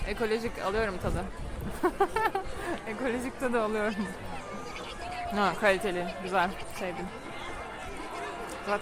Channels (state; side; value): identical; both; correlation 1.00